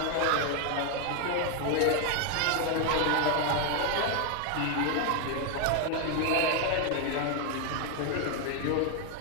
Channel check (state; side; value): different; both; correlation 0.00